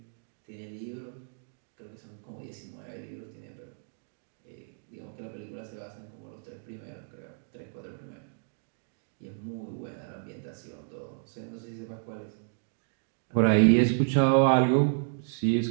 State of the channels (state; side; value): silent; left; digital silence